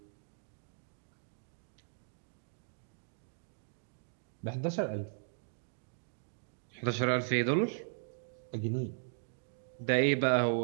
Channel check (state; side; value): silent; left; digital silence